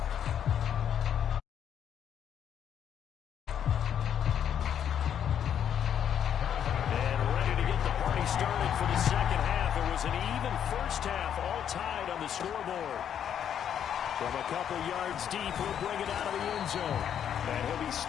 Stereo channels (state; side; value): quieter; right; 9.1 dB